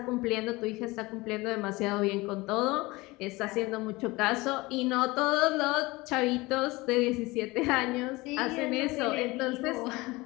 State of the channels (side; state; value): right; quieter; 22.0 dB